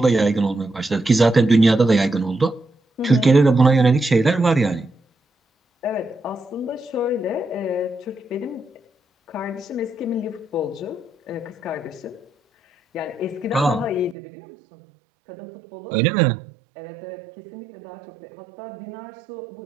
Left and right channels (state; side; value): drops out; left; at 14.2 s